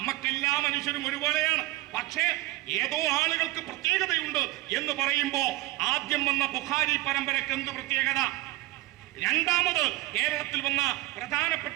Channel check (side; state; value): left; quieter; 19.3 dB